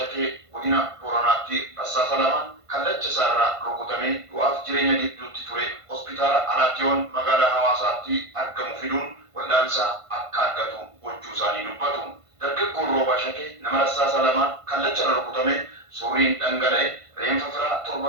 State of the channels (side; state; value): left; late; 1.5 ms